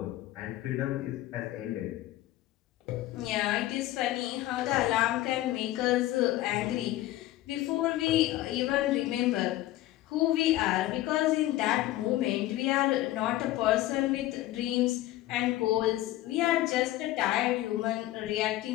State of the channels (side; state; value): right; quieter; 15.6 dB